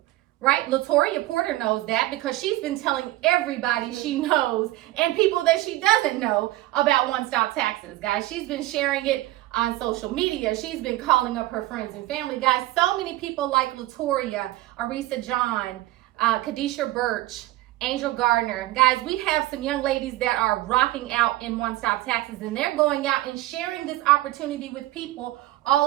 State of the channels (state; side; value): quieter; left; 17.0 dB